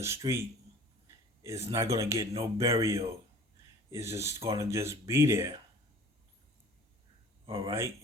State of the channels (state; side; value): normal; both; correlation 0.46